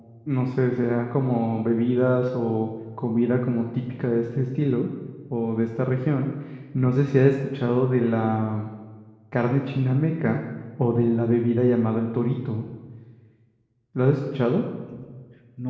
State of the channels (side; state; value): both; identical; correlation 1.00